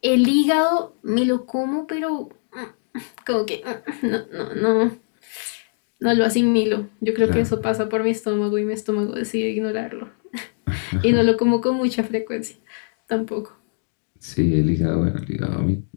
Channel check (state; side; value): silent; right; digital silence